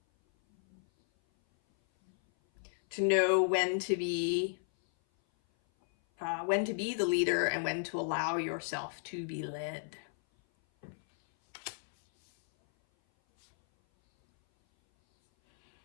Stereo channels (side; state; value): right; silent; 56 dB below the other